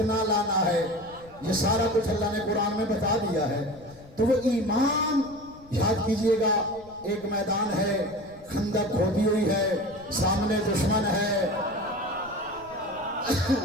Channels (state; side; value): noise; left; rumble, 23 dB below the sound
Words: لانا ہے. یہ سارا کچھ اللہ نے قرآن میں بتا دیا ہے. تو وہ ایمان یاد کیجئے گا. ایک میدان ہے، خندق کھودی ہوئی ہے، سامنے دشمن ہے.